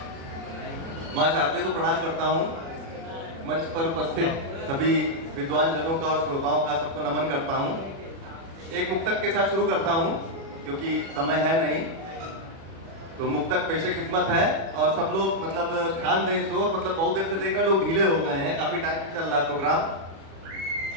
माँ शारदे को प्रणाम करता हूँ। मंच पर उपस्थित सभी विद्वान जनों का और श्रोताओं का सबको नमन करता हूँ। एक मुक्तक के साथ शुरू करता हूँ क्योंकि समय है नहीं, तो मुक्तक पेशे खिदमत है और सब लोग ध्यान दें तो बहुत देर से देखकर लोग ढीले हो गए हैं, काफी टाइम से चल रहा है प्रोग्राम।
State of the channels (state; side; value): late; left; 36 ms